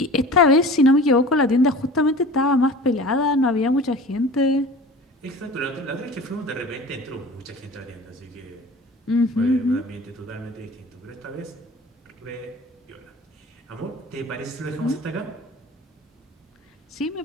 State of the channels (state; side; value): normal; both; correlation 0.40